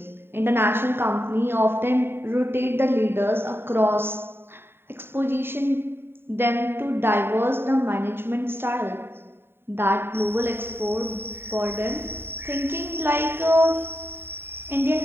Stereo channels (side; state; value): left; late; 0.11 ms